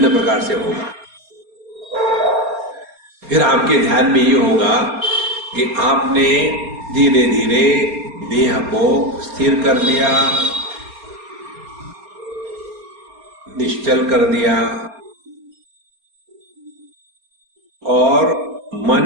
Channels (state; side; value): late; left; 4.2 ms